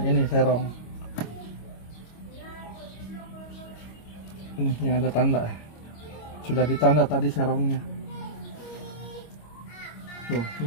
ini serong. Ini yang ada tanda. Sudah ditanda tadi serongnya. Tuh,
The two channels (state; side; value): late; right; 25 ms